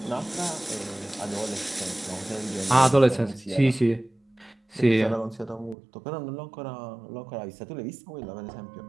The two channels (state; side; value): drops out; left; at 5.8 s